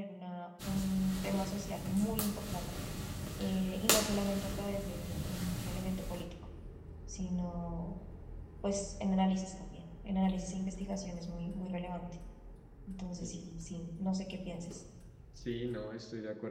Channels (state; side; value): identical; both; correlation 1.00